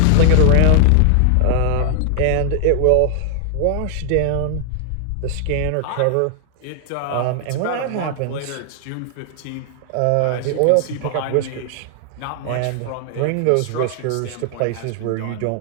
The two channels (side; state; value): both; different; correlation 0.00